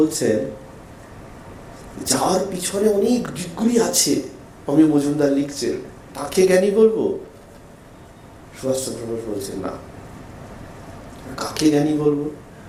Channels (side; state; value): both; identical; correlation 1.00